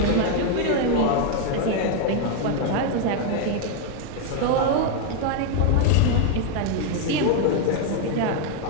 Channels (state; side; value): different; both; correlation 0.01